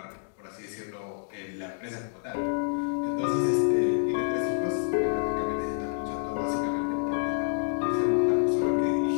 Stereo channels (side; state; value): right; silent; 59 dB below the other